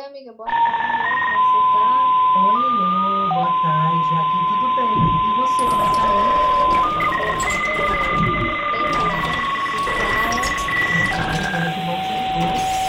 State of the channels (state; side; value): identical; both; correlation 1.00